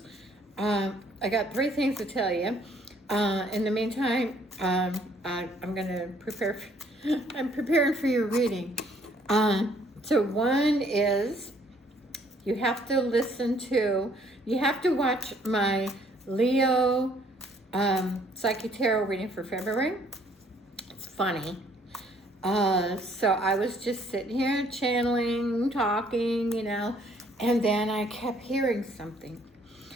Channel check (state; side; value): normal; both; correlation 0.63